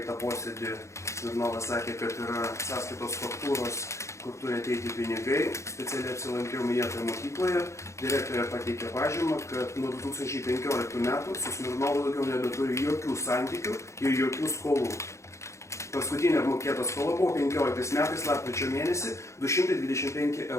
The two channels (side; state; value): right; late; 0.14 ms